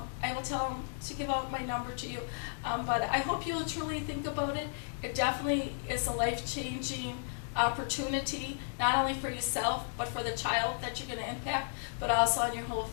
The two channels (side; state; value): right; silent; digital silence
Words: I will tell them to give out my number to you. But I hope you will truly think about it. It definitely is a life-changing opportunity, not only for yourself, but for the child that you're going to impact, but also on your whole